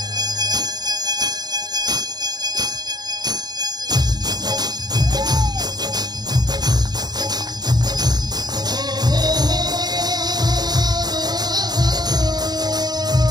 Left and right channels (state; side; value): late; left; 0.20 ms